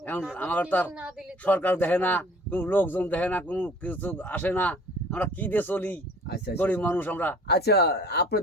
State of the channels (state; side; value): normal; both; correlation 0.50